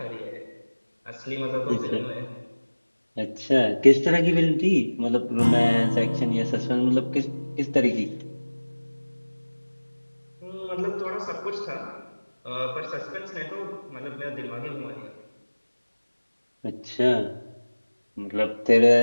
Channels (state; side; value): inverted; both; correlation -1.00